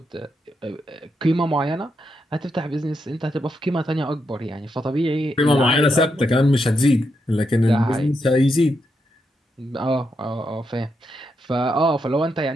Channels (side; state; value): both; normal; correlation 0.82